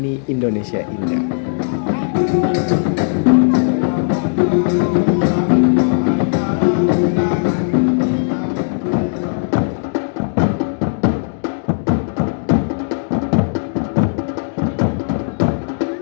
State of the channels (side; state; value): right; silent; digital silence